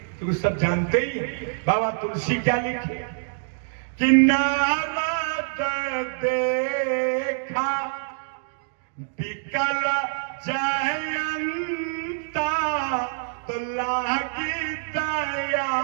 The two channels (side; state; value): left; silent; digital silence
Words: क्योंकि सब जानते ही हैं। बाबा तुलसी क्या लिखे कि नारद देखा विकल जयंता, तो लागी दया